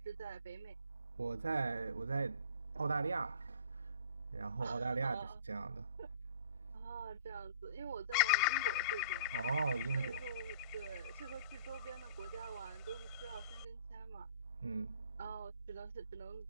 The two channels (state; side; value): inverted; both; correlation -0.48